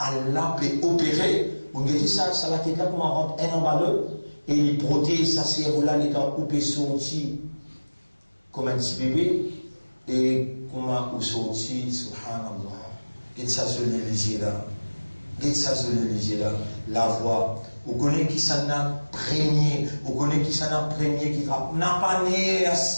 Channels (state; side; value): inverted; both; correlation -1.00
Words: peut opérer. On dit ça la tête là pour rendre un emballeur et il protège sa cerveau-là, il est coupé sorti comme un petit bébé et comment il sorti, subhanallah. Qu'est-ce que ça se lit là? Qu'est-ce que ça se lit là? La voix. Vous connaissez qui ça n'a premier, vous connaissez qui ça n'a premier qui n'a pas né,